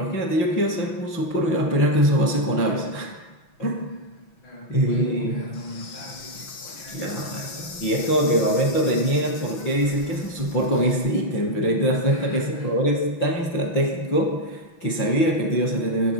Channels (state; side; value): late; right; 6.0 ms